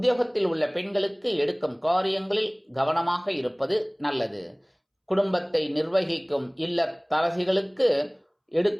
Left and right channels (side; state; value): both; identical; correlation 1.00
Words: உள்ள பெண்களுக்கு எடுக்கும் காரியங்களில் கவனமாக இருப்பது நல்லது. குடும்பத்தை நிர்வகிக்கும் இல்லத்தரசிகளுக்கு